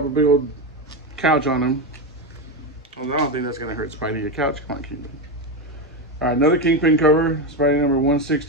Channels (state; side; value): normal; both; correlation 0.12